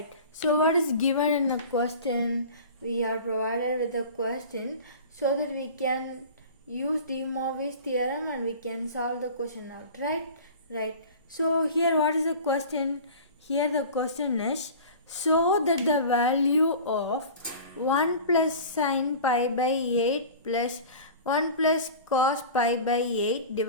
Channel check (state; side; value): inverted; both; correlation -0.38